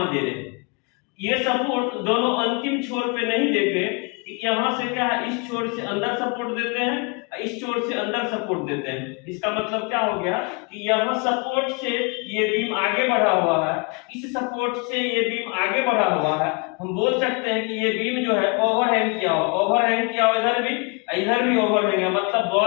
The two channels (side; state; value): right; quieter; 32.4 dB